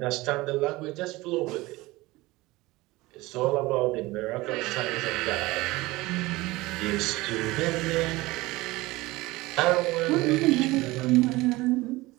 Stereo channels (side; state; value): left; quieter; 20.4 dB